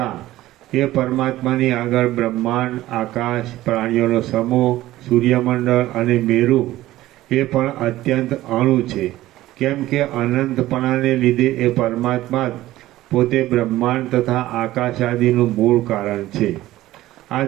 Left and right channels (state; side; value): quieter; left; 15.8 dB